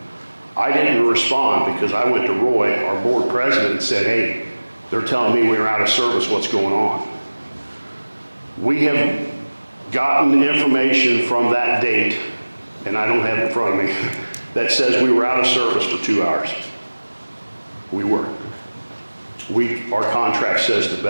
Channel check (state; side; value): inverted; both; correlation -1.00